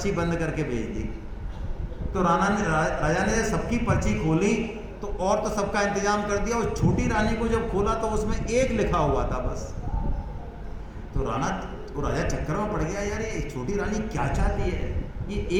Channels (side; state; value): both; identical; correlation 1.00